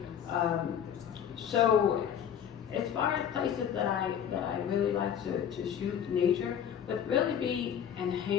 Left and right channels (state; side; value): quieter; right; 8.9 dB